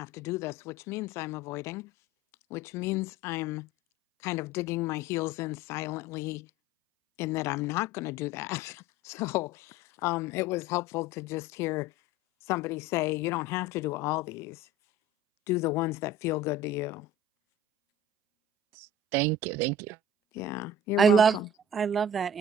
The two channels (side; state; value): both; normal; correlation 0.40